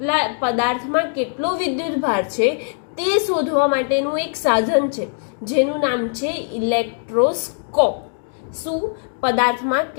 પદાર્થમાં કેટલો વિદ્યુતભાર છે તે શોધવા માટેનું એક સાધન છે, જેનું નામ છે ઇલેક્ટ્રોસ્કોપ. શું? પદાર્થમાં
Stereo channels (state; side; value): silent; right; 65 dB below the other